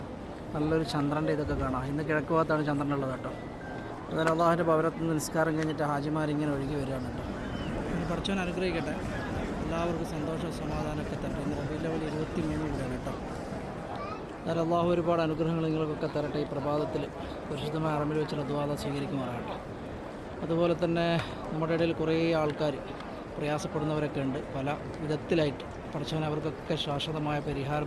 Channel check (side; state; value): both; identical; correlation 1.00